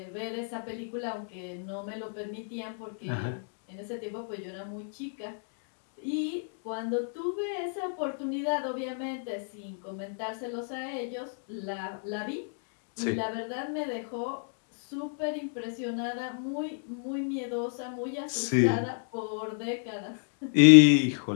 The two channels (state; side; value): silent; right; digital silence